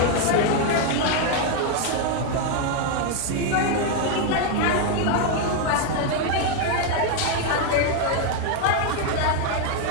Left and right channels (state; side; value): different; both; correlation 0.01